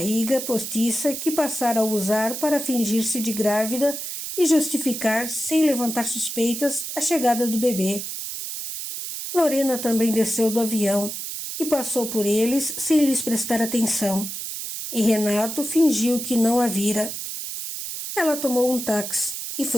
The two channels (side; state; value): right; noise; hiss, 6 dB below the sound